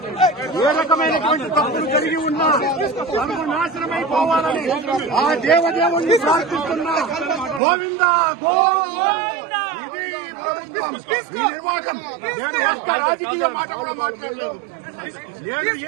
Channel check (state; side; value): drops out; left; at 7.6 s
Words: ఏ రకమైనటువంటి తప్పులు కలిగి ఉన్నా సర్వనాశనమైపోవాలని ఆ దేవదేవుణ్ణి ప్రార్థిస్తున్నా. గోవిందా గోవిందా. ఇది ప్రభుత్వం, ఈ నిర్వాహకం. నేను ఒక్క రాజకీయ మాట కూడా మాట్లాడలేదు. నేను